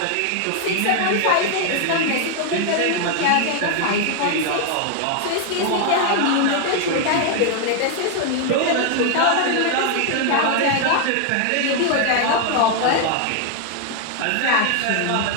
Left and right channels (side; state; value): both; different; correlation 0.00